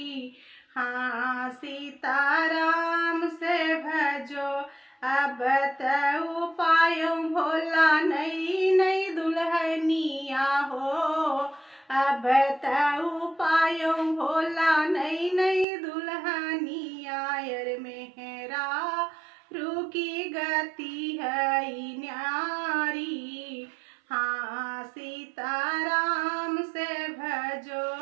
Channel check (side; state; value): left; drops out; at 15.7 s